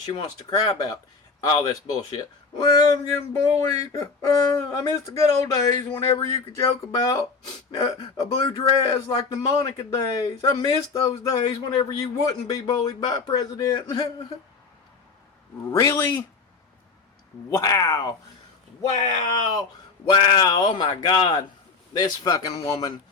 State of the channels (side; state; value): right; quieter; 4.6 dB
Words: she wants to cry about all this bullshit. Well, I'm getting bullied. I miss the good old days whenever you could joke about a blue dress like the Monica days. I miss those days whenever you wouldn't be bullied by a president. Really? Wow. Oh my God. This fucking woman.